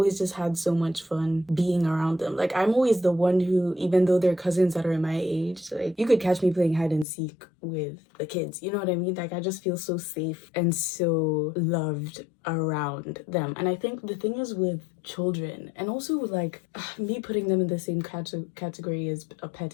just had so much fun being around them. Like, I'm always the one who, even though they're cousins that are my age, like you could catch me playing hide and seek with the kids, you know what I mean? Like, I just feel so safe and so loved around them. And I think the thing is with children, and also like me putting them in the same category as a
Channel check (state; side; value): drops out; right; at 7.1 s